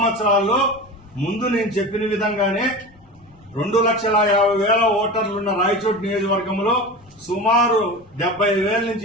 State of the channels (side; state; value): left; noise; rumble, 28 dB below the sound